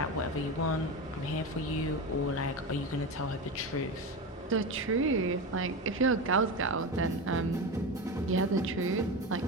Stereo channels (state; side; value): normal; both; correlation 0.21